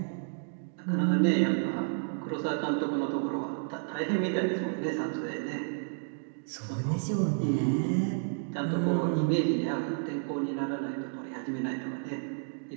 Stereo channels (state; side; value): silent; left; digital silence